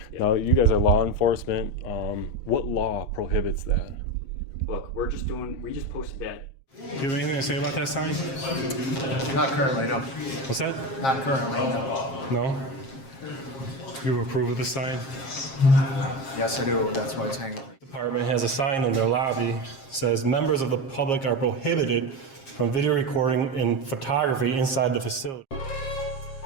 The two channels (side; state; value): right; late; 7.5 ms